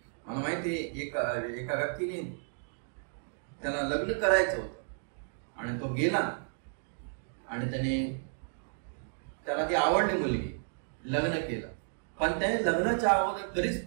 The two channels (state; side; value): silent; left; digital silence